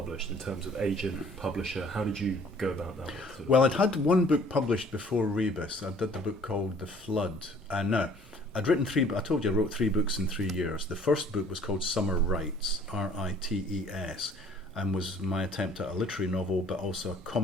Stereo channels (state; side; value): normal; both; correlation 0.55